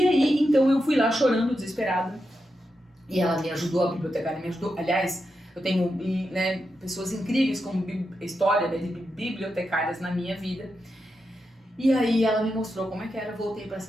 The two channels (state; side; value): normal; both; correlation 0.87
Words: aí, então eu fui lá chorando, desesperada, e ela me ajudou, a bibliotecária me ajudou. Aliás, eu tenho, né, pessoas incríveis como história, né, de bibliotecárias na minha vida. E aí ela me mostrou como é que era, voltei para a